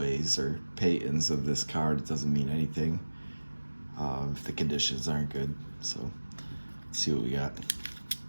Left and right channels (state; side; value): inverted; both; correlation -1.00